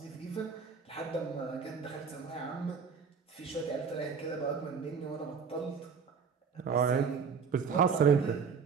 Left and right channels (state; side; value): quieter; left; 5.9 dB